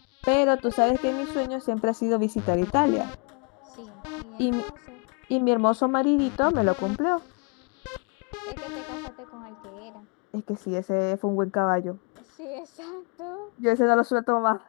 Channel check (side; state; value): right; quieter; 34.3 dB